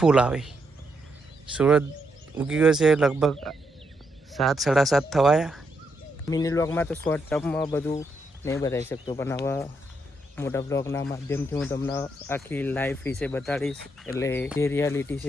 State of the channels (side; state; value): both; normal; correlation 0.79